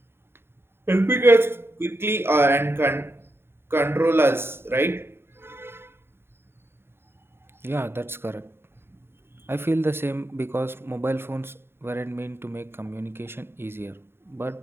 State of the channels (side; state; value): left; late; 0.11 ms